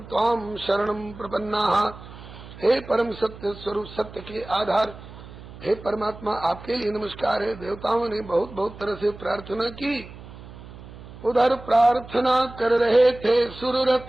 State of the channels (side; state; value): right; noise; hum, 16 dB below the sound